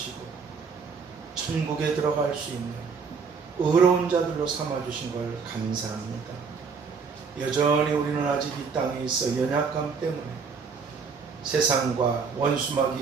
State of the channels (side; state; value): left; quieter; 5.4 dB